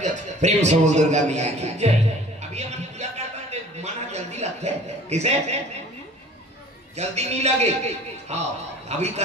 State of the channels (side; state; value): both; normal; correlation 0.48